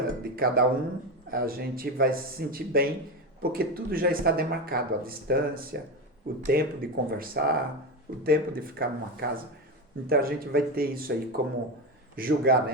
de cada um, a gente vai se sentir bem, porque tudo já está demarcado, a distância, o tempo de conversar, o tempo de ficar numa casa. Então a gente vai ter isso aí como julgar,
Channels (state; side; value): normal; both; correlation 0.16